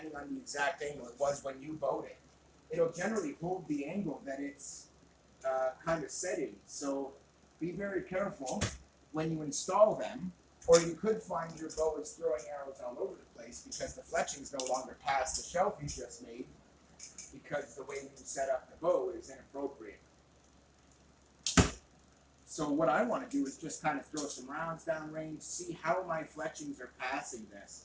on the exact angle it was when you bowed it. It'll generally hold the angle that it's kind of setting. So be very careful when you install them, or you could find your bow is throwing arrows all over the place because the fletching's no longer past the shelf you just made because the way you set up the bow is inappropriate. So what I want to do is just kind of throw some rounds down range, see how my fletchings are passing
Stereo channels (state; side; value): identical; both; correlation 1.00